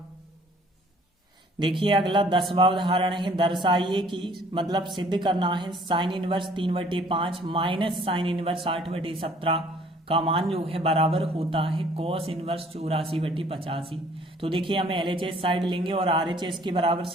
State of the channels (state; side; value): normal; both; correlation 0.57